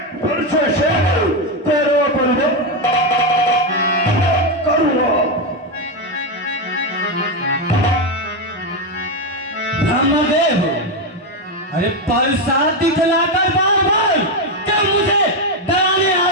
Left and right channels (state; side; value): normal; both; correlation 0.08